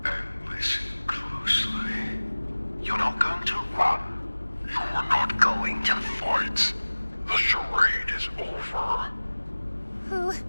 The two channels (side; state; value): both; inverted; correlation -1.00